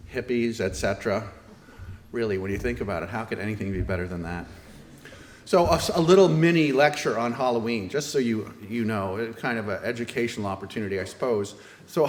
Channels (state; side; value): identical; both; correlation 1.00